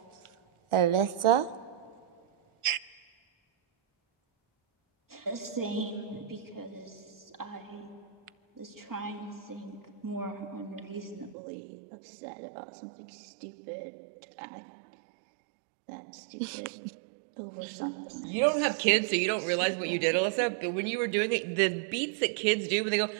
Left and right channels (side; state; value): left; drops out; at 11.4 s